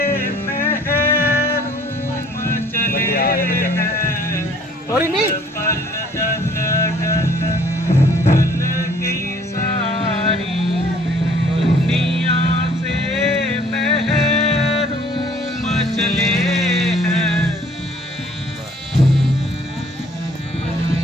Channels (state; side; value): normal; both; correlation 0.57